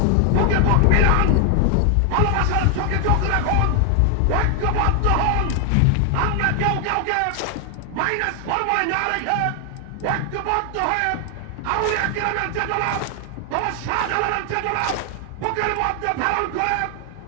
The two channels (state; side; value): different; both; correlation 0.00